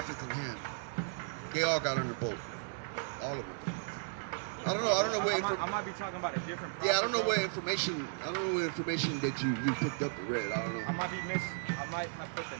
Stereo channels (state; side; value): silent; left; 54 dB below the other